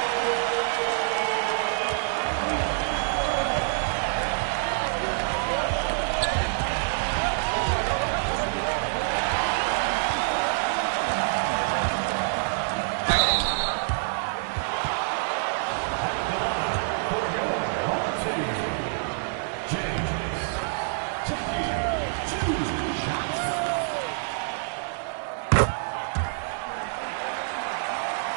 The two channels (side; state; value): left; silent; digital silence